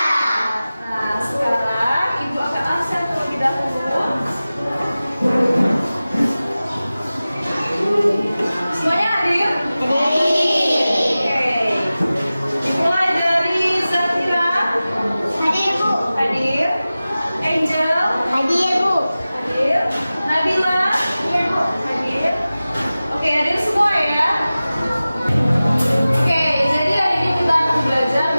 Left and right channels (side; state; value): both; inverted; correlation -0.96